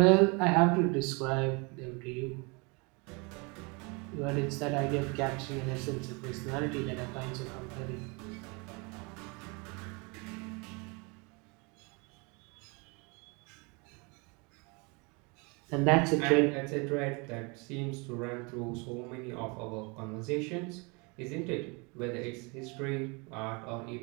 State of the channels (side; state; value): left; quieter; 30.0 dB